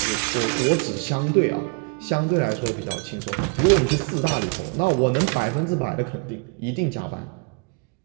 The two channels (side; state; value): left; quieter; 34.0 dB